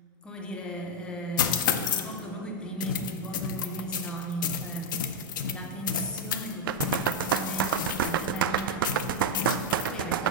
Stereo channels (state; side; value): normal; both; correlation 0.04